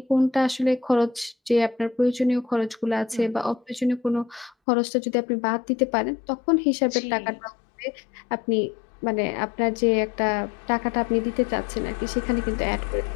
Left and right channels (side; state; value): right; drops out; at 4.5 s